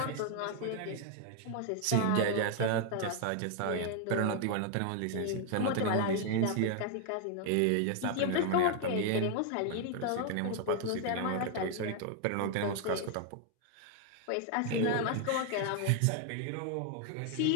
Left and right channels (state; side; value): different; both; correlation 0.00